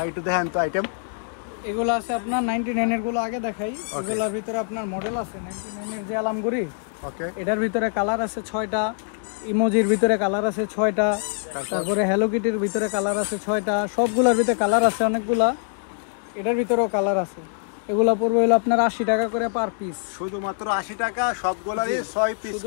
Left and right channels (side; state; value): right; silent; 63 dB below the other